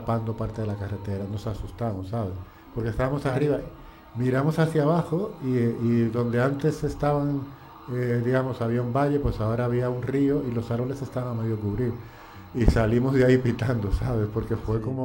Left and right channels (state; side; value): identical; both; correlation 1.00